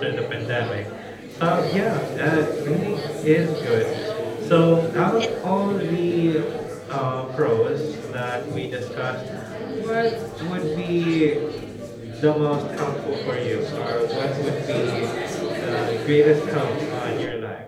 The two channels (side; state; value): both; identical; correlation 1.00